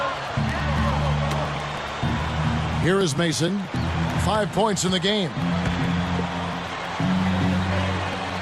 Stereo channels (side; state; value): both; identical; correlation 1.00